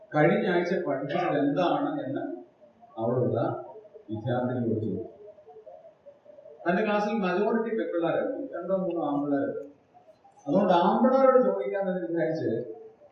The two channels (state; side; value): identical; both; correlation 1.00